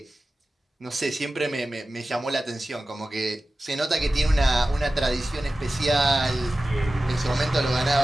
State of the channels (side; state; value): both; normal; correlation 0.95